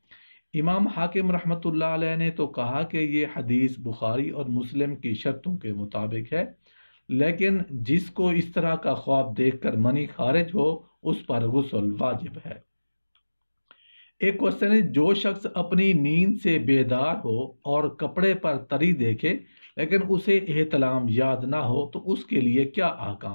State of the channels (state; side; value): inverted; both; correlation -1.00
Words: امام حاکم رحمۃ اللہ علیہ نے تو کہا کہ یہ حدیث بخاری اور مسلم کی شرطوں کے مطابق ہے، لیکن جس کو اس طرح کا خواب دیکھ کر منی خارج ہو اس پر غسل واجب ہے۔ ایک کوشچن ہے، جو شخص اپنی نیند سے بیدار ہو اور کپڑے پر تری دیکھے لیکن اسے احتلام یاد نہ ہو تو اس کے لیے کیا